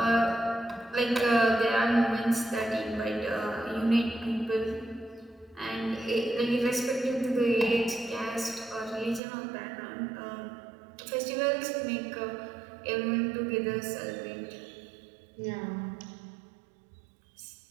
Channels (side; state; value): left; drops out; at 9.2 s